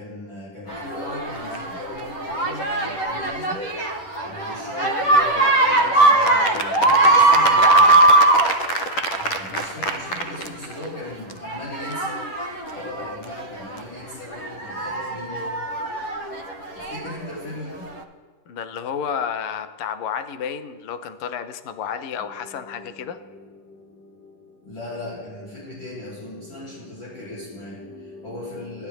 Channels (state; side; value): late; right; 10 ms